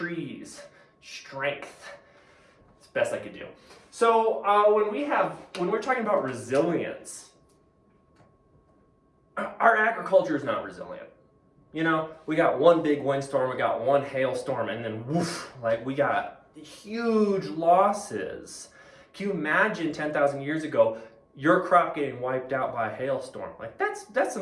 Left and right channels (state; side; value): identical; both; correlation 1.00